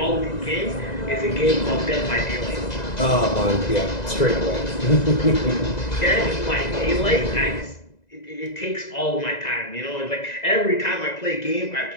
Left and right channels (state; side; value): late; right; 2.0 ms